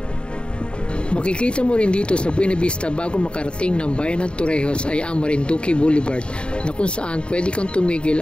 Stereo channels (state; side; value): late; right; 0.053 ms